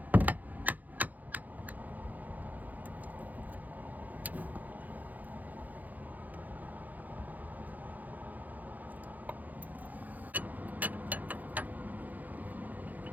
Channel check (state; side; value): late; left; 0.081 ms